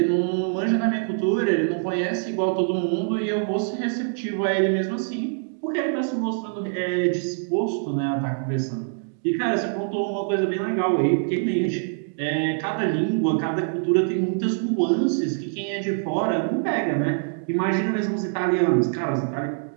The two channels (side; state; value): left; silent; digital silence